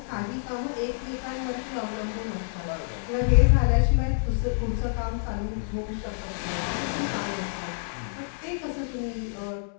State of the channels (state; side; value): silent; right; digital silence